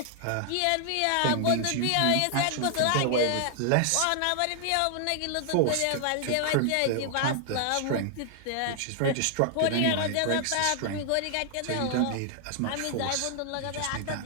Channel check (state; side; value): different; both; correlation 0.00